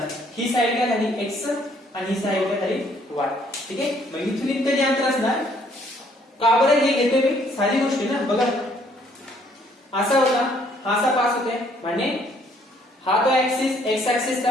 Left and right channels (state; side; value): normal; both; correlation 0.64